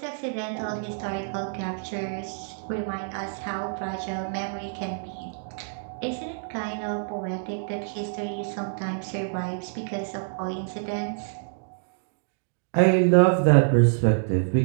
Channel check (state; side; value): silent; left; digital silence